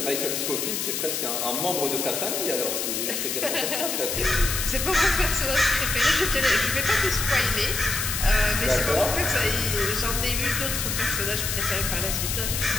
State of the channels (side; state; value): left; noise; hiss, 1 dB below the sound